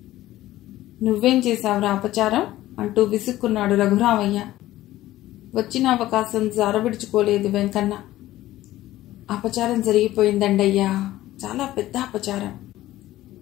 నువ్వేం చేశావురా అపచారం అంటూ విసుక్కున్నాడు రఘురామయ్య. వచ్చిన అవకాశం జారవిడుచుకోలేదు వెంకన్న. అపచారం జరిగిపోయిందండయ్యా, చాలా పెద్ద అపచారం.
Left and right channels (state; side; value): quieter; right; 15.4 dB